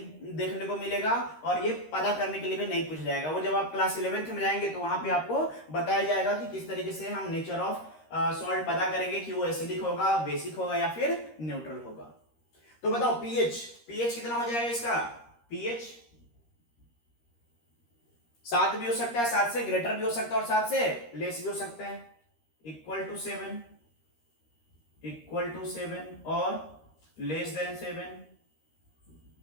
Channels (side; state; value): right; late; 13 ms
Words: देखने को मिलेगा और ये पता करने के लिए भी नहीं पूछ जाएगा। वो जब आप क्लास 11th में जाएंगे तो वहां पे आपको बताया जाएगा कि किस तरीके से हम नेचर ऑफ सॉल्ट पता करेंगे कि वो एसिडिक होगा, बेसिक होगा या फिर न्यूट्रल होगा। तो बताओ पीएच कितना हो जाएगा इसका, पीएच 7 भी हो सकता है, 7 से ग्रेटर भी हो सकता है और 7 से लेस भी हो सकता है। इक्वल टू 7 और लेस देन 7